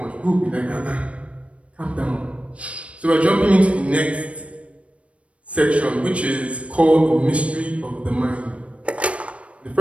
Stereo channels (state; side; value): late; left; 0.063 ms